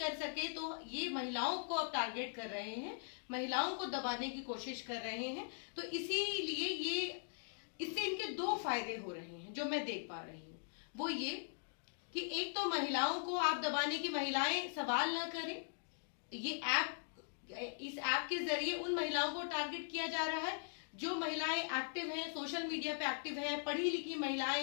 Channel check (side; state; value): right; silent; digital silence